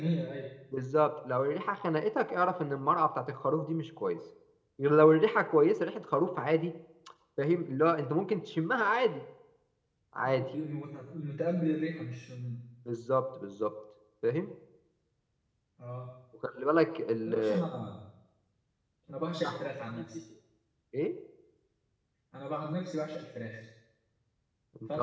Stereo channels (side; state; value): both; identical; correlation 1.00